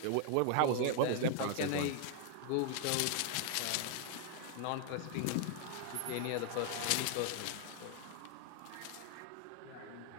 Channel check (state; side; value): different; both; correlation 0.00